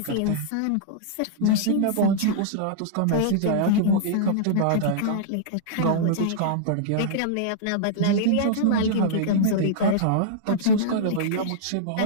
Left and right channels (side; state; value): both; different; correlation -0.02